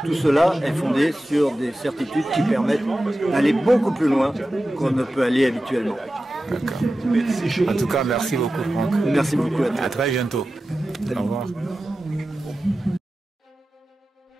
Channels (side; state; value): both; normal; correlation 0.94